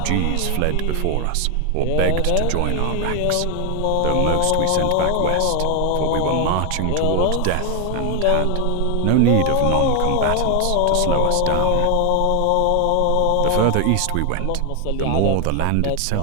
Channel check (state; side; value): different; both; correlation 0.01